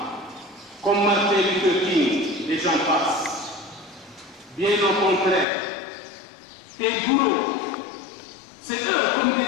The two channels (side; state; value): right; drops out; at 5.5 s